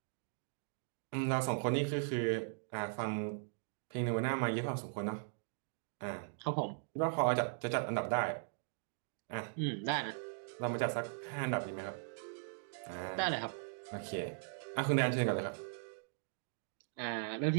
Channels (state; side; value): silent; left; digital silence